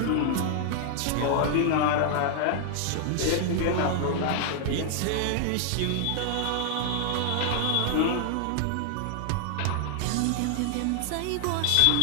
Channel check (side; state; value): both; different; correlation 0.00